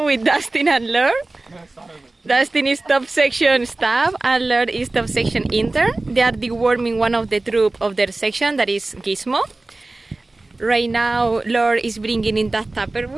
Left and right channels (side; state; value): left; quieter; 3.1 dB